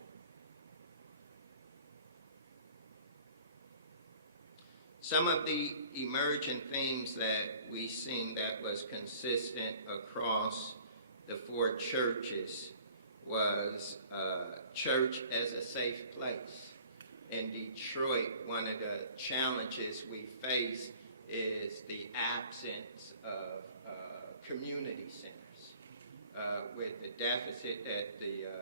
Some of the emergent themes that we seen that was consistent across the four churches was church as a safe place. In Detroit, one of the challenges we face is the absence of community centers. With the deficit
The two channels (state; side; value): inverted; both; correlation -0.51